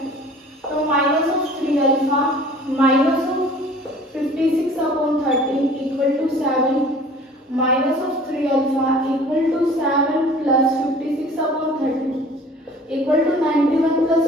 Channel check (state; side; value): normal; both; correlation 0.48